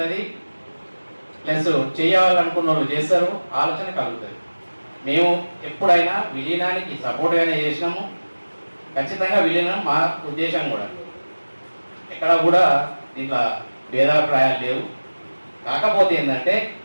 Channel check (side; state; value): both; inverted; correlation -1.00